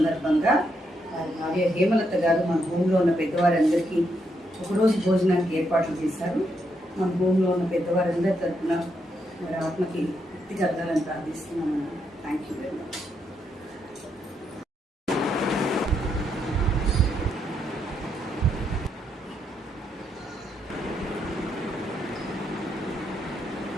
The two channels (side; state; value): both; normal; correlation 0.79